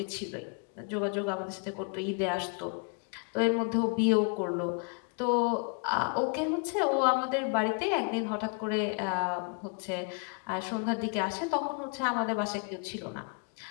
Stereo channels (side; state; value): right; quieter; 37.3 dB